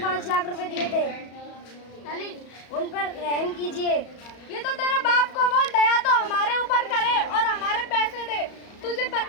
5 लाख रुपए दिए थे। अली उन पर रहम कीजिए। ये तो तेरे बाप को बोल, दया तो हमारे ऊपर करे और हमारे पैसे दे। तुझे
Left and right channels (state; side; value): late; right; 34 ms